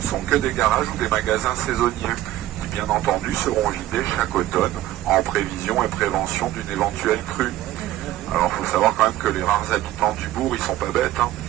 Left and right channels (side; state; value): left; quieter; 14.5 dB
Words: sont que des garages ou des magasins saisonniers, qui bien entendu seront vidés chaque automne, en prévision et prévention d'une éventuelle crue. Alors il faut savoir quand même que les rares habitants du bourg, ils sont pas bêtes, hein.